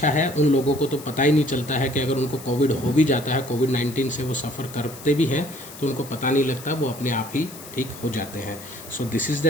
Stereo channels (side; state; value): left; noise; hiss, 16 dB below the sound